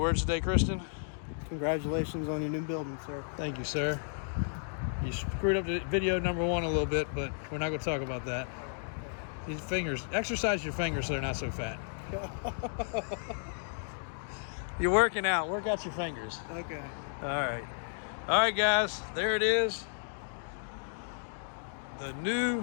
today, Kristen? Congratulations on your new building, sir. Thank you, sir. You screwed up the video number 1 a little bit, but we're not gonna talk about that. These fingers, exercise your fingers so they're not so fat. You're working out, work out your fingers. Okay. All right guys, there it is. The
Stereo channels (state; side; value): silent; right; digital silence